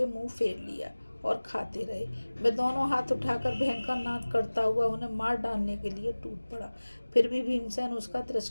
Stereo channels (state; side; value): inverted; both; correlation -1.00